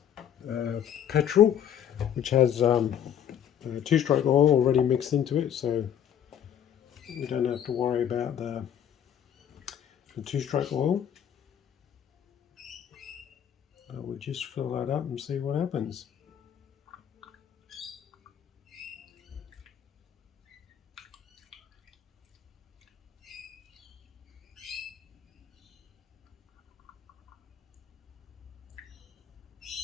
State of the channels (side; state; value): right; quieter; 9.4 dB